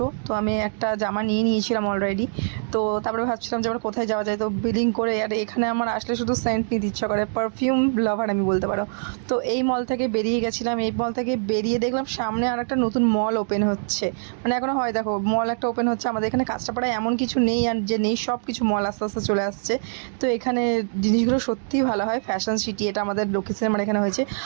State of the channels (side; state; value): left; silent; digital silence